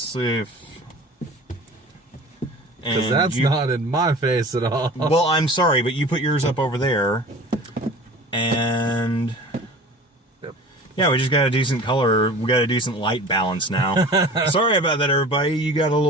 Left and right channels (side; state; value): both; normal; correlation 0.40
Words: see if... Because that's not in my face at all. Well, I'm sorry, but you put yours up over there. And... Yep. Yeah, we just got a decent color. We got a decent light balance now. Sorry about that, everybody. You got a